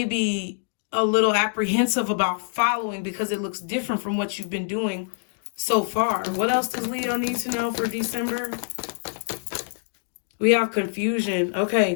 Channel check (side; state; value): right; silent; digital silence